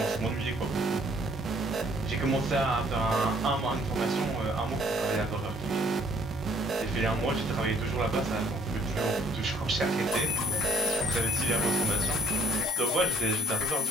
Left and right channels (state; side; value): normal; both; correlation 0.62